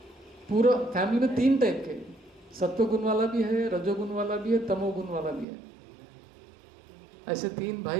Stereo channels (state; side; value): drops out; left; at 5.5 s